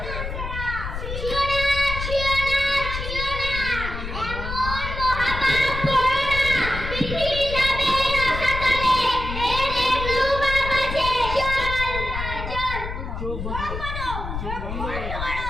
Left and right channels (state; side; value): noise; left; rumble, 6 dB below the sound